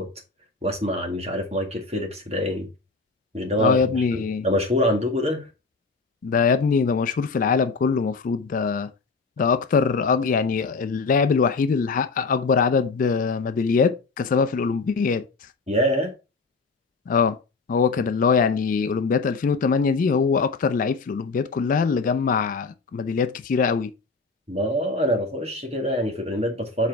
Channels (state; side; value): quieter; right; 4.0 dB